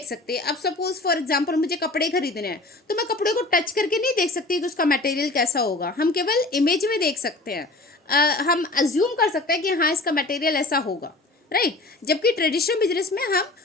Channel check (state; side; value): quieter; right; 3.0 dB